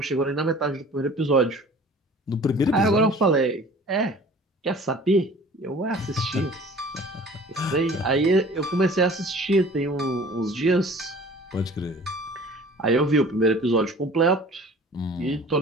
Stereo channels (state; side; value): normal; both; correlation 0.46